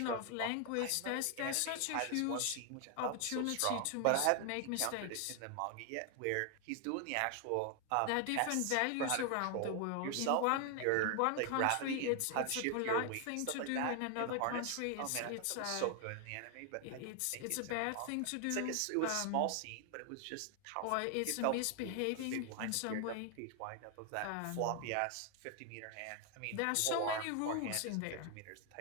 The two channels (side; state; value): both; different; correlation 0.00